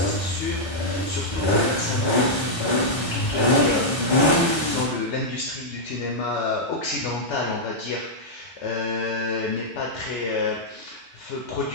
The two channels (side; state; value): both; normal; correlation -0.06